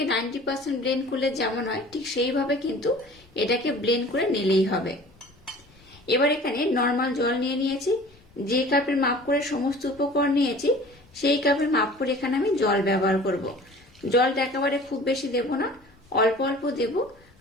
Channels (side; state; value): both; normal; correlation 0.45